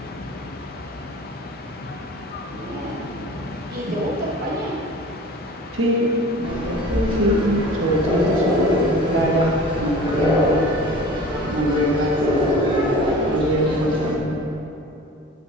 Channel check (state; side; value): normal; both; correlation 0.41